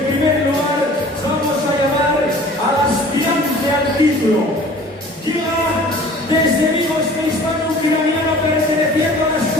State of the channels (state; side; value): normal; both; correlation 0.47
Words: primer lugar vamos a llamar al aspirante al título. Llega desde Vigo este hispano-ucraniano perteneciendo a la